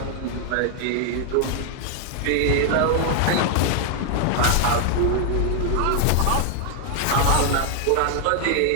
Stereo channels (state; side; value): different; both; correlation 0.00